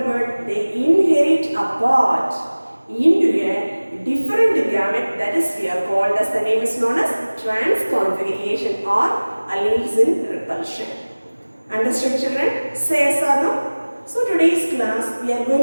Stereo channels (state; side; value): inverted; both; correlation -1.00